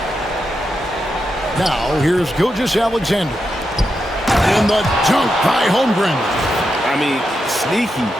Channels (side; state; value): both; normal; correlation 0.86